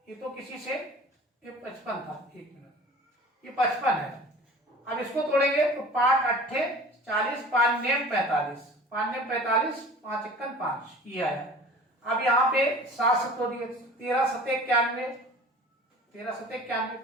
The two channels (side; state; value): both; normal; correlation 0.43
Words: ये तो किसी से, ये 55 था, 1 मिनट, ये 55 है। अब इसको तोड़ेंगे तो 5 अट्ठे 40, 5 नेम 45, 5 नेम 45, 5 51 5, ये आया। अब यहाँ पे 7 से तोड़िए, 13 7 91, 13 7 91,